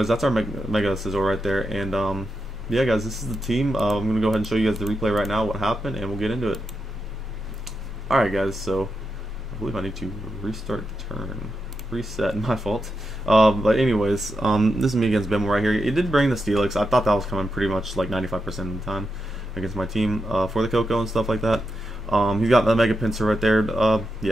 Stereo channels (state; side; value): normal; both; correlation 0.86